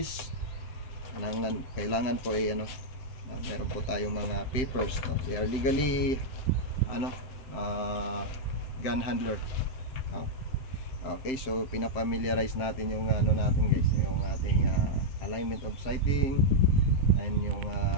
Kailangan po meron po tayong mga papers, we are legally gun handler. Okay, so pinafamiliarize natin yung natin guys, yung ating alignment of sighting and yung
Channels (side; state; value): right; late; 7.7 ms